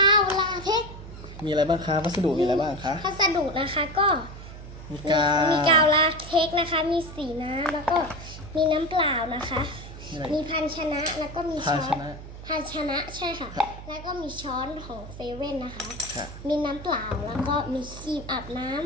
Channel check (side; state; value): right; noise; hum, 13 dB below the sound